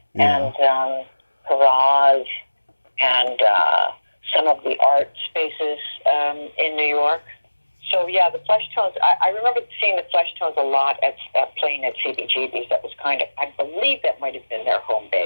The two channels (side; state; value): both; inverted; correlation -1.00